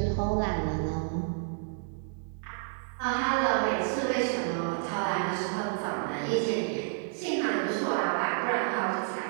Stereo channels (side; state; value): left; silent; digital silence